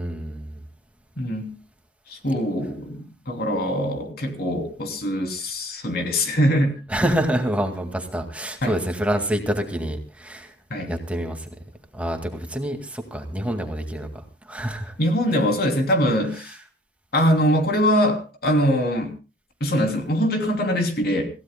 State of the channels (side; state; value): both; normal; correlation 0.56